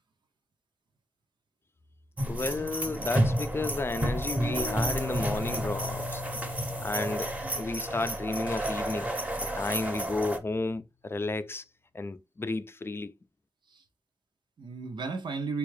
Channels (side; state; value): both; normal; correlation 0.76